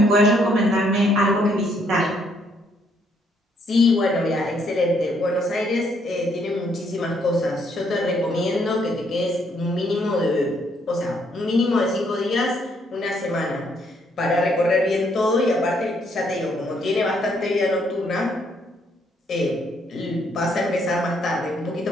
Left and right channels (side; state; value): both; normal; correlation 0.70